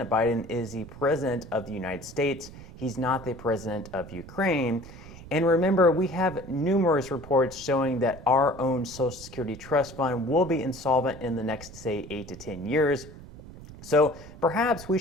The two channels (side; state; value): right; noise; rumble, 16 dB below the sound